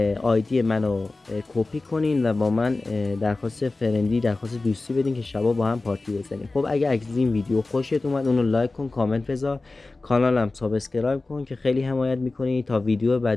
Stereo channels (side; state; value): right; quieter; 3.3 dB